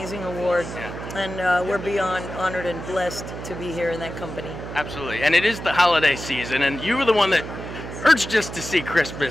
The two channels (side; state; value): right; noise; hum, 9 dB below the sound